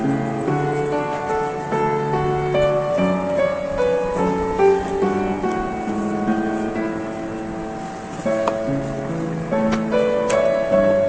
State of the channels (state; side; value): identical; both; correlation 1.00